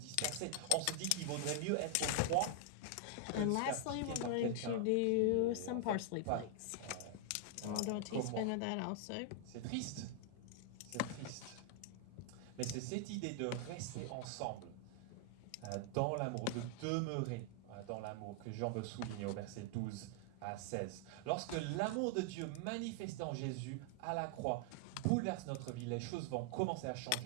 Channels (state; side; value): different; both; correlation 0.00